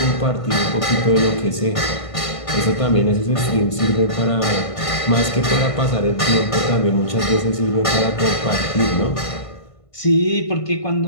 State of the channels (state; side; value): late; right; 1.5 ms